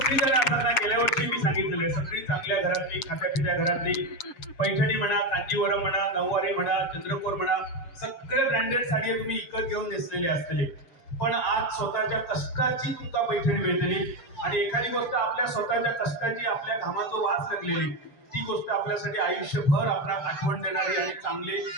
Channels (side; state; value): right; late; 6.8 ms